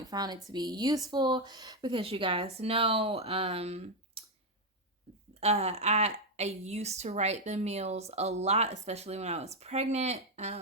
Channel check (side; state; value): both; normal; correlation 0.04